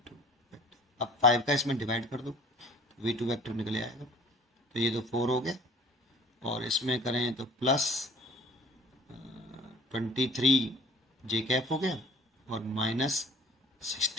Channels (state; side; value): normal; both; correlation 0.48